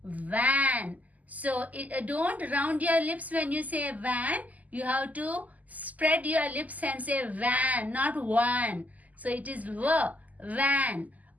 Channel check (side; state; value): left; late; 0.078 ms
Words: van. So don't round your lips when you say van. You have to spread your lips and say van, not one. So it is van.